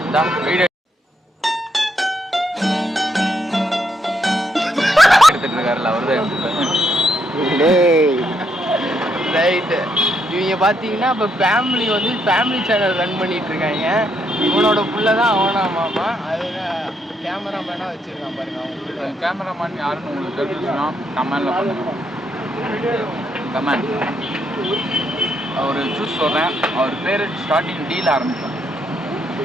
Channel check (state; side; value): normal; both; correlation 0.76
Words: வீடியோ எடுத்துட்டு இருக்காருல்ல அவரு. ரைட்டு. இவங்க பார்த்தீங்கன்னா இப்போ ஃபேமிலி சேனல் ரன் பண்ணிட்டு இருக்காங்க. இவனோட புள்ள தான் அவனா மாமா. அதுதான் கேமராமேனாக வச்சுருக்கான் பாருங்க. அவங்க கேமராமேன் யாருன்னு உங்களுக்கு தெரிஞ்சுன்னா கமெண்டில் பண்ணுங்க. கமெண்ட் அவர் சூஸ் சொல்கிறேன். அவர் பேர் ஸ்டார்டிங் டீல் ஆரம்பிக்கும்.